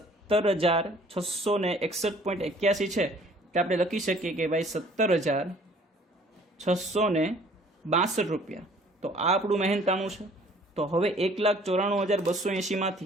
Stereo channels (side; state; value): both; normal; correlation 0.55